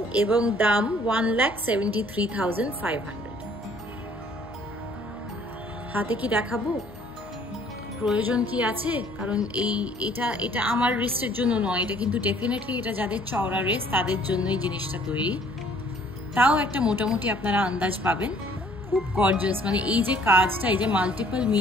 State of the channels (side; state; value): right; noise; hum, 21 dB below the sound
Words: এবং দাম 1,73,500। হাতে কি দেখাবো, প্রয়োজন কি আছে? কারণ এটা আমার রিস্টের জন্য নয়, এটা কিন্তু ডেফিনেটলি এটা যাদের চওড়া রেস্ট তাদের জন্যই জিনিসটা তৈরি। তাও একটা মোটামুটি আপনারা আন্দাজ পাবেন। খুব গর্জিয়াস, মানে এই যে কাজটা, এই যে মাল্টিপল